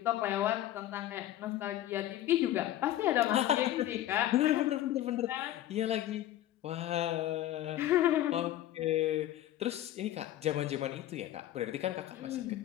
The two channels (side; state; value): right; quieter; 13.4 dB